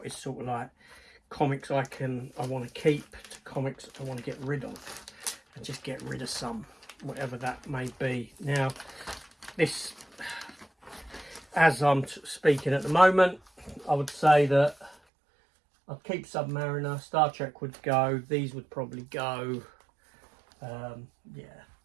is sort of like comics I want to keep to comics I want to get rid of, and just get rid of some, whatever that may be. Now, this, as I'm speaking at the moment, I would say that I'd keep Submariner, Star Trek would go, these would probably go, yeah.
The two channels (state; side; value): drops out; left; at 15.0 s